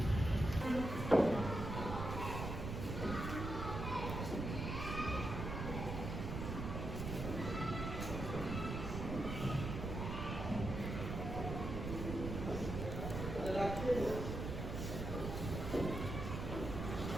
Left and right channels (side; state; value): right; noise; rumble, 4 dB below the sound